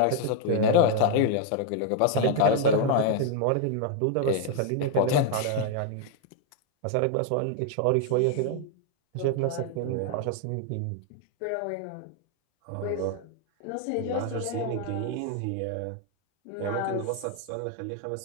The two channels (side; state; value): both; different; correlation 0.00